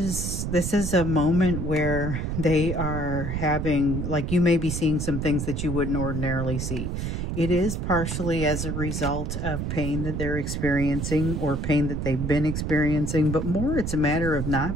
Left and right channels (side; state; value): right; noise; rumble, 3 dB below the sound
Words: a moment where they are having, like, you may be seeing some things that you wouldn't ordinarily see. It is partially as a result of pain that they're experiencing or pain that they've been experiencing, but more it's a matter of